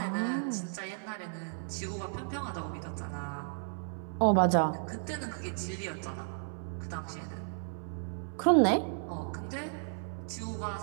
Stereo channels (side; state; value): left; silent; 55 dB below the other